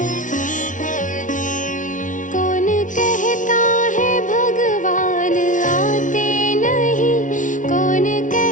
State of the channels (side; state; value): right; late; 0.37 ms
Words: कौन कहता है भगवान आते नहीं कौन